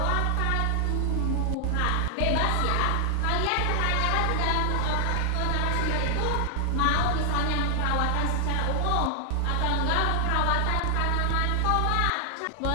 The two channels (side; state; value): both; different; correlation 0.00